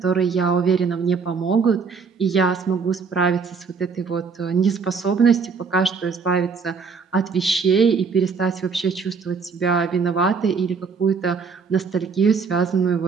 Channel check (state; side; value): quieter; left; 5.3 dB